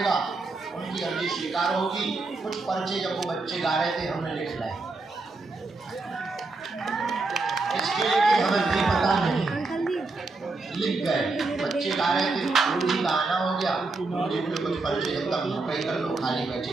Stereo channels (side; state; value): left; quieter; 3.6 dB